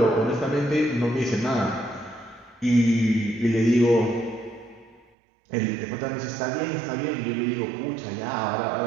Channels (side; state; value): left; drops out; at 5.1 s